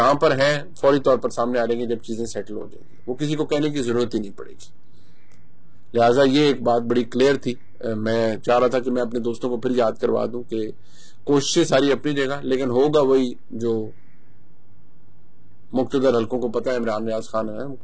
پر ہے فوری طور پر سامنے آ جائیں گے, جب چیزیں سیٹل ہو جائیں گی. وہ کسی کو کہنے کی ضرورت ہی نہیں پڑے گی. لہٰذا یہ ایک بات بڑی کلیئر تھی. میں چاہ رہا تھا کہ میں اپنے دوستوں کو پھر یاد کروا دوں کہ کوششیں ساری اپنی جگہ, لیکن ہوگا وہی جو مقتدر حلقوں کو پتہ ہے. عمران ریاض خان ہے,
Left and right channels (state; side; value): identical; both; correlation 1.00